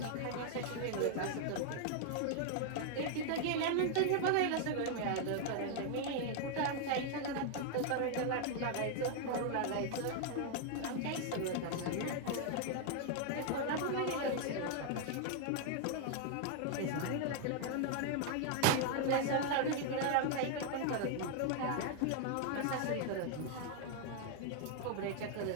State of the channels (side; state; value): both; different; correlation 0.00